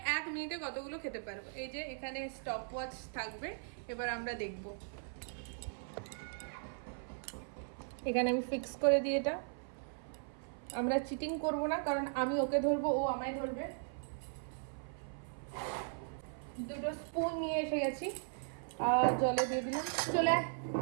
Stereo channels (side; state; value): left; silent; 52 dB below the other